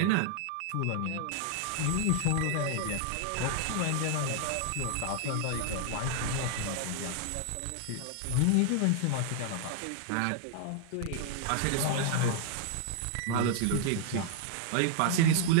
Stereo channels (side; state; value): both; different; correlation 0.00